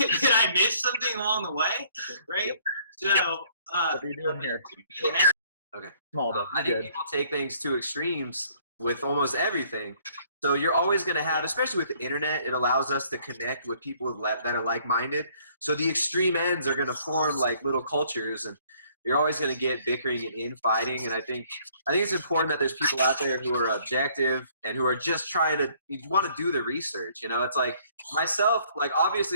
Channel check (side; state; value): both; inverted; correlation -0.63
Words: I miss something along the way? Right? So, what are you doing here? Okay. I think people take things to extremes with almost everything. So you're always going to have, especially with the internet, it allows us to connect with people that are like-minded. So the extreme ends are going to form like little cultures, and you're always going to get bickering and infighting. And I think it's important that there's people out there who are objective and who are just trying to want to do the research. It's like myself, like